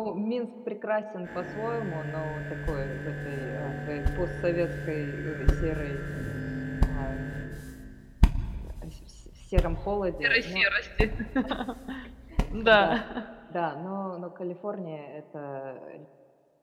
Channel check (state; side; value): identical; both; correlation 1.00